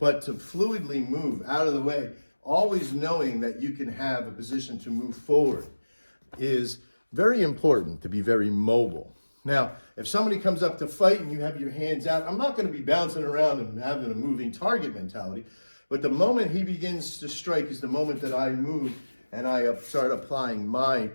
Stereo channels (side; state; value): both; inverted; correlation -1.00